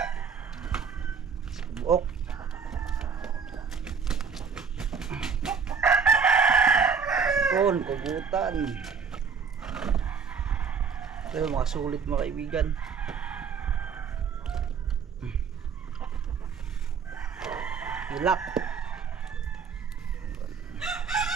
Buok. Yun, kubutan. Ito yung mga sulit mga kaibigan. Hilak.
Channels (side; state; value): left; quieter; 6.1 dB